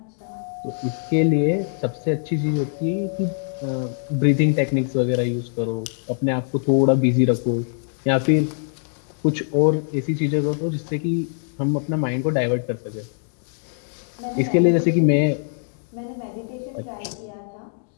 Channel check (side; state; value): right; silent; digital silence